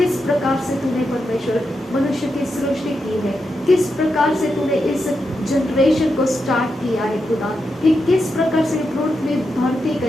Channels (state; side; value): normal; both; correlation 0.86